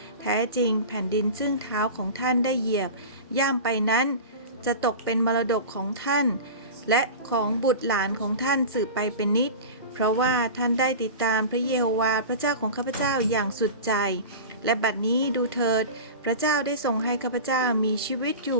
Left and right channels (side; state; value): both; inverted; correlation -0.31